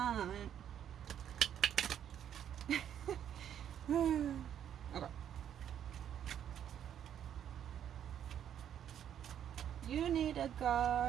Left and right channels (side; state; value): left; quieter; 9.7 dB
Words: Okay. You need a